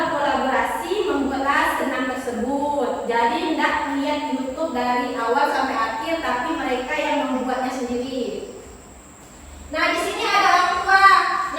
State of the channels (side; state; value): both; identical; correlation 1.00